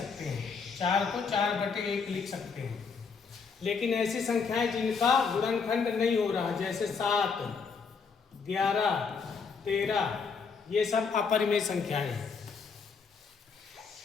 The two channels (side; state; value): right; quieter; 5.4 dB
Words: हैं। 4 को 4/1 लिख सकते हैं। लेकिन ऐसी संख्याएं जिनका गुणनखंड नहीं हो रहा, जैसे 7, 11, 13, ये सब अपरिमेय संख्याएं हैं।